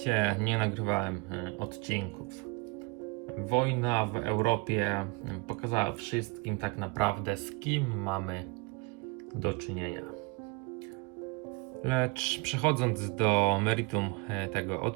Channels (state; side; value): quieter; left; 27.1 dB